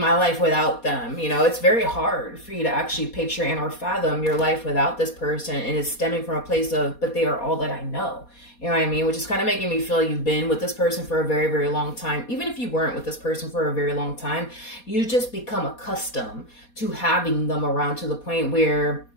my life without them. You know, it's very hard for you to actually picture and or fathom your life without this person. And it's stemming from a place of, but they are all that I know. You know what I mean? Which is kind of making me feel like you've been with this person for a very, very long time. Even if you weren't with this person for a very long time, you just become accustomed to having them around to the point where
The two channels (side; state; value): right; late; 4.2 ms